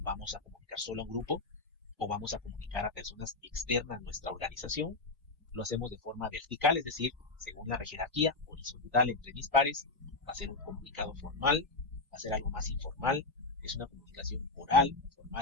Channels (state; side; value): quieter; right; 3.5 dB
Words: a comunicar solo a un grupo o vamos a comunicar a personas externas a nuestra organización. Lo hacemos de forma vertical, es decir, según la jerarquía, horizontal entre mis pares, va a ser un comunicado formal, va a ser algo más informal, es una comunicación oral,